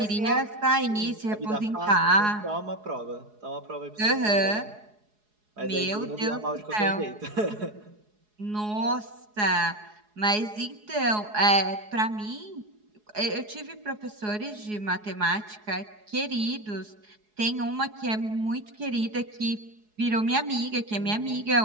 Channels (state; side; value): late; left; 4.7 ms